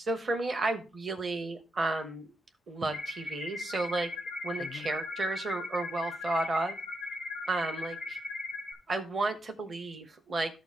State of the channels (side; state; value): both; normal; correlation 0.82